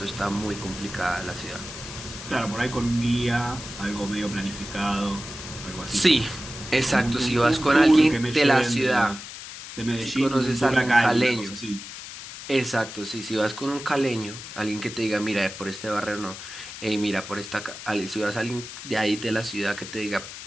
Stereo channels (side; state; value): left; noise; hiss, 11 dB below the sound